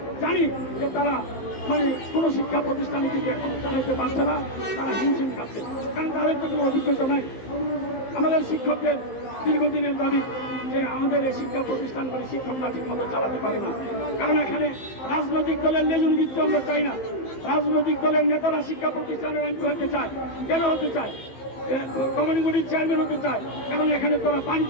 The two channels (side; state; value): right; late; 15 ms